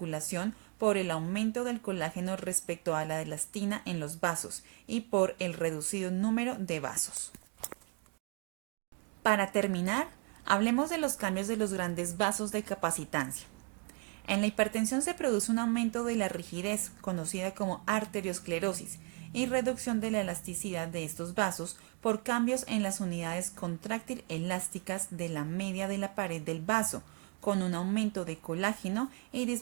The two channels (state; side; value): quieter; left; 30.7 dB